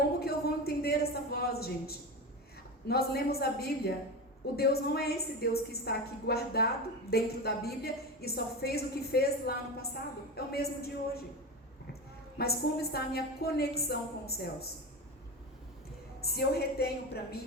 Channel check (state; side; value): normal; both; correlation 0.23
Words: que eu vou entender essa voz, gente? Nós lemos a Bíblia. O Deus não é esse Deus que está aqui guardado dentro da Bíblia e só fez o que fez lá no passado. É o mesmo de hoje. Mas como está a minha conexão com os céus? Se eu retenho para